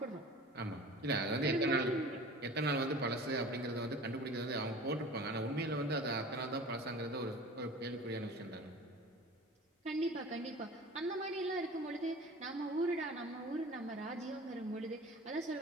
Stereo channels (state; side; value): normal; both; correlation 0.41